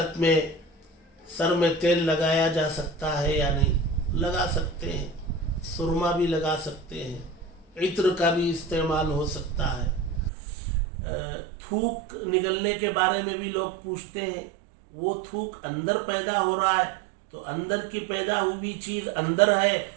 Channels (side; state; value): left; drops out; at 10.3 s